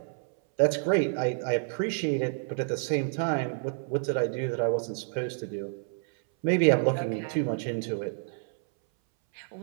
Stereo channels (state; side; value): silent; left; 59 dB below the other